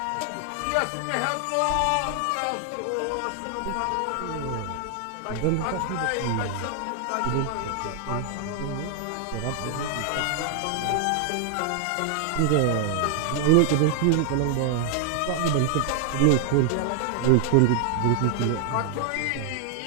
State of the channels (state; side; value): different; both; correlation 0.00